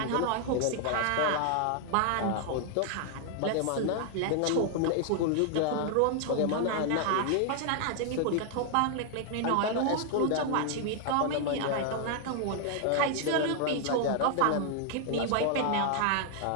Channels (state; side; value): different; both; correlation 0.00